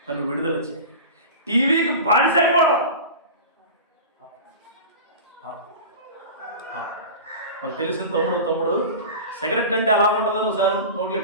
నన్ను విడుదల చేయి. టీవీకి బానిసైపోవడం మనకు తెలిసిన తమ్ముడు సిగరెట్ అంటే ఎలా ఉంటుందని ఒకసారి నోట్లు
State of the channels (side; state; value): both; inverted; correlation -0.32